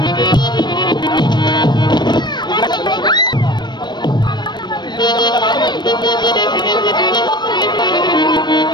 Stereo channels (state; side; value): late; right; 0.22 ms